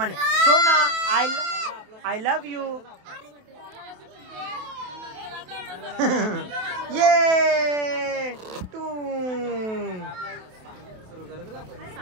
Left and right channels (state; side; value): late; left; 28 ms